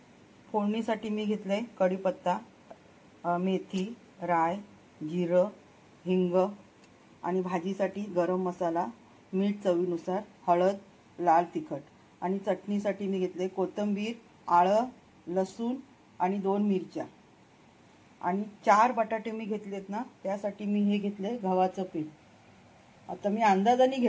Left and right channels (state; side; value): identical; both; correlation 1.00